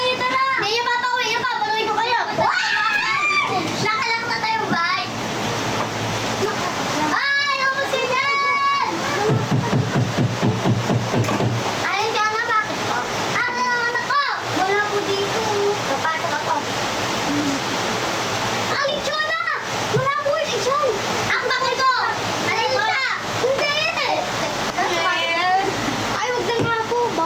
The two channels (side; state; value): both; identical; correlation 1.00